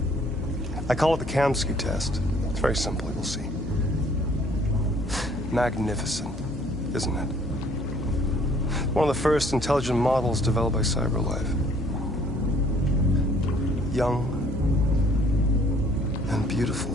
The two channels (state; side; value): noise; left; hum, 9 dB below the sound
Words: I call it the Kamsky test. It's very simple, you'll see. Magnificent, isn't it? One of the first intelligent models developed by CyberLife. Young and beautiful